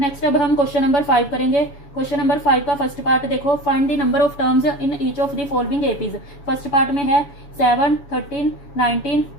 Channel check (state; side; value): late; right; 7.1 ms